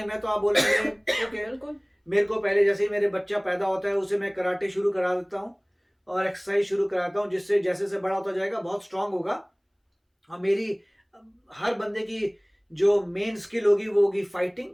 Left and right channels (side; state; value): both; identical; correlation 1.00